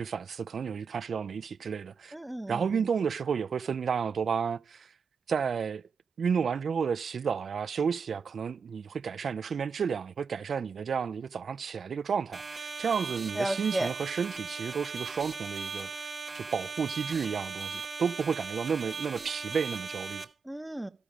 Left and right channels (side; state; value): left; quieter; 5.6 dB